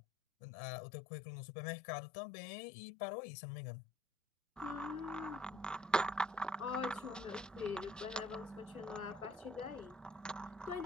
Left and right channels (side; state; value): both; normal; correlation 0.61